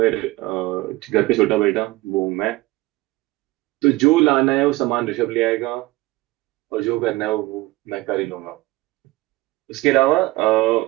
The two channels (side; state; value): left; quieter; 19.7 dB